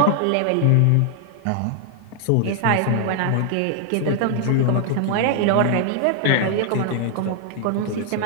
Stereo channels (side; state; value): both; different; correlation 0.00